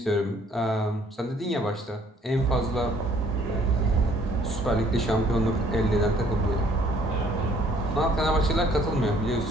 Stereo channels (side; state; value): both; normal; correlation 0.61